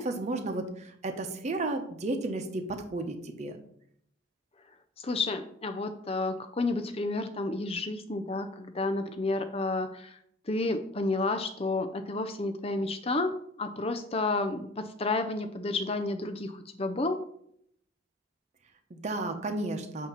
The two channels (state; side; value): normal; both; correlation 0.45